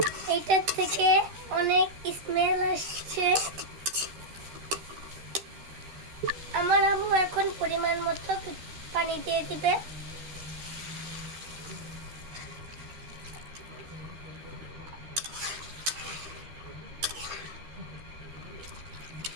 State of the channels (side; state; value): left; late; 13 ms